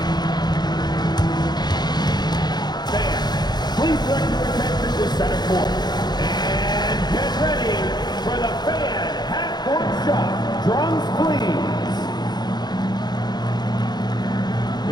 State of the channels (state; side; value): late; right; 0.20 ms